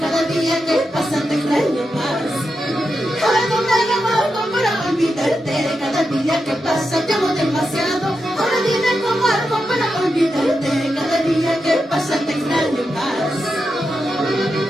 día que pasa te extraño más. Ahora no tengo algo para olvidarte, cada día que pasa te amo demasiado. Ahora dime cómo algo para olvidarte, cada día que pasa te extraño más.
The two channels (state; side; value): normal; both; correlation 0.88